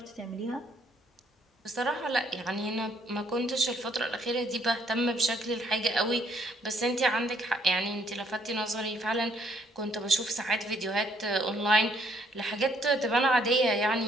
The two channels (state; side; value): normal; both; correlation 0.67